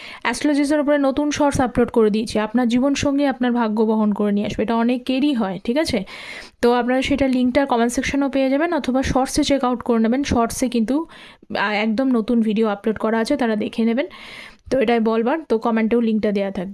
অ্যাস্ট্রোলজিসের উপরে নতুন শর্টস আপলোড করে দিয়েছি, আপনার জীবনসঙ্গী আপনার ভাগ্য বহন করে নিয়ে আসবে, এটা অনেকেরই হয়, ঠিক আছে? তো আপনারা সেটা লিঙ্কটা কমেন্ট সেকশনেও পেয়ে যাবেন, অথবা শর্টসে চেক আউট করে নেবেন। শর্টসে কিন্তু একদম নতুন ভিডিও আপলোড করা আছে, তারা দেখে নেবেন। তো এটাই বলবার, তো কমেন্টেও লিঙ্কটা দেওয়া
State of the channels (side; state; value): both; identical; correlation 1.00